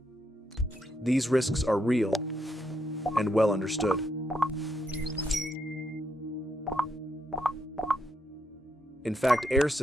These risks are real and well understood. In fact, air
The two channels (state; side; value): normal; both; correlation 0.79